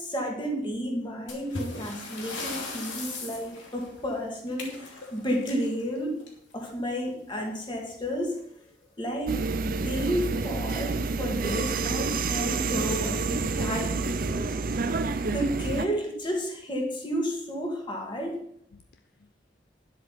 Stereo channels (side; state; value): both; normal; correlation 0.58